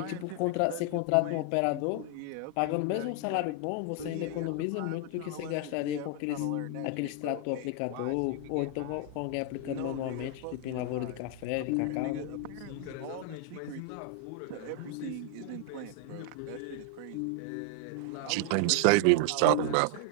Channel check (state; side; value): different; both; correlation 0.00